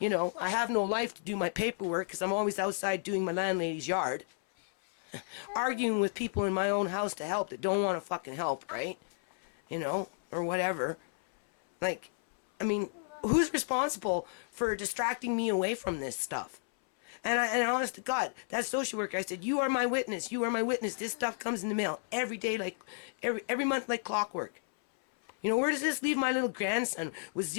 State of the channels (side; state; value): right; silent; 56 dB below the other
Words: know, I have no life to do my paperwork because I'm always outside doing my landlady's yard. Arguing with people in my own house to help that don't want to fucking help, right? You know, or whatever. Like, I mean, who's responsible for distracting me away from this stuff? And honest to God, that social worker, I said, you are my witness. You are my witness. This stuff comes in the mail every day, like every month, like clockwork. You know, where does this leave my little grandson with